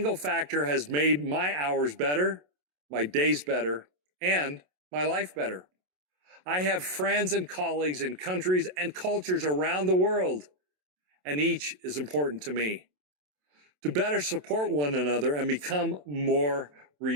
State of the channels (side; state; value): left; late; 27 ms